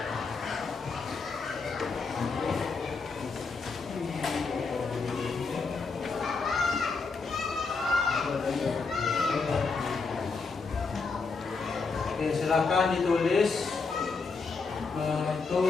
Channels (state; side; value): quieter; right; 4.5 dB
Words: Oke, silakan ditulis itu